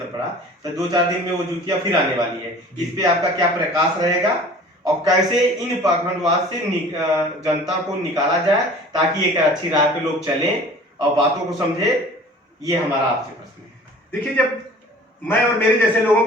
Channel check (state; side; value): normal; both; correlation 0.46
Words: पड़ा, तो 2-4 दिन में वो जूतियां फिर आने वाली है, इस पे आपका क्या प्रकाश रहेगा और कैसे इन पाखंडवाद से जनता को निकाला जाए ताकि एक अच्छी राह पे लोग चलें और बातों को समझे? ये हमारा आपसे प्रश्न है। देखिए, जब मैं और मेरे जैसे लोगों